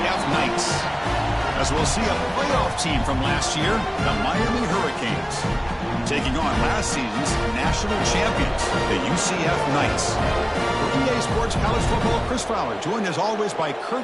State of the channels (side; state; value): both; identical; correlation 1.00